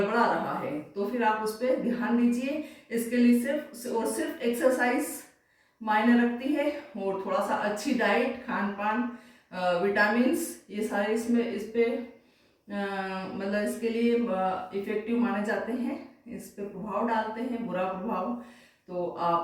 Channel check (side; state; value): both; identical; correlation 1.00